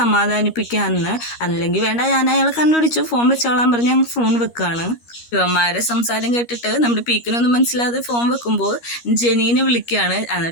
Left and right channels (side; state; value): right; late; 13 ms